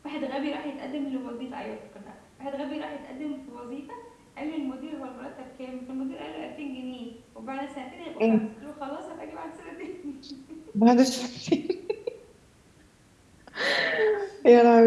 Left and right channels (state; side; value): identical; both; correlation 1.00